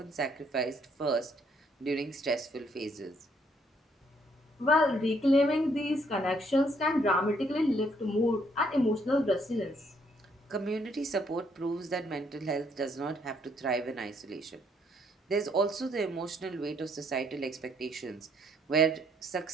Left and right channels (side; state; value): both; normal; correlation 0.69